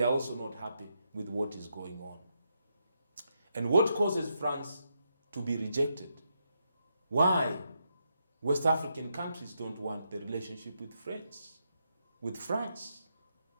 are also not happy with what is going on. And what causes France to be rejected? Why West African countries don't want the relationship with France?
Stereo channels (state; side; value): inverted; both; correlation -0.82